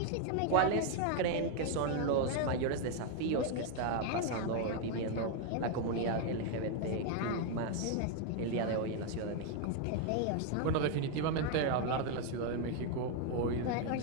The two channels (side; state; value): both; different; correlation 0.01